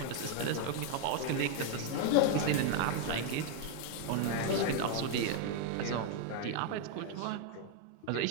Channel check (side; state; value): both; different; correlation 0.01